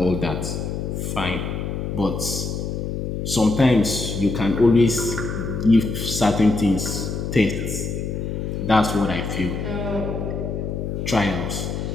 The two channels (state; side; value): noise; left; hum, 3 dB below the sound